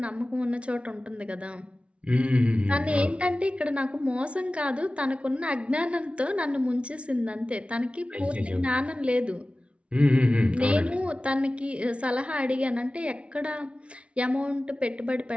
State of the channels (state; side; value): late; left; 0.061 ms